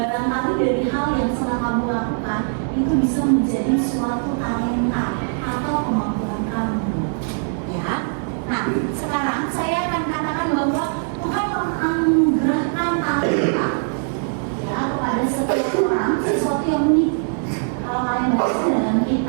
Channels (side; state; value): left; silent; 63 dB below the other